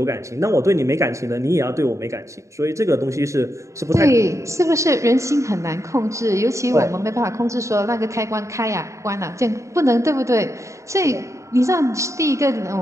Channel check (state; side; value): late; left; 0.15 ms